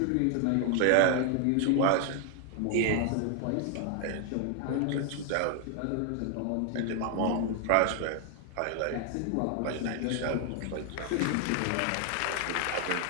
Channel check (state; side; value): different; both; correlation 0.00